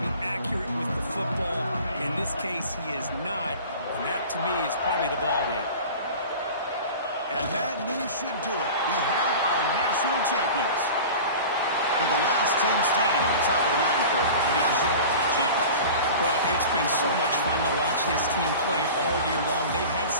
be accurate with the football. In this case, he is not, and that, to me, is probably the ball game. And that knee should do it. We have our national champions. with the last team standing at the top of the mountain for national champions. Well, it's been so much fun to watch this team play all year long. They've had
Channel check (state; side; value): inverted; both; correlation -0.37